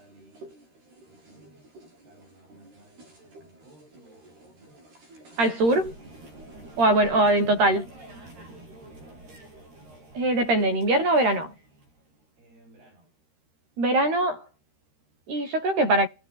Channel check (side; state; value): left; late; 13 ms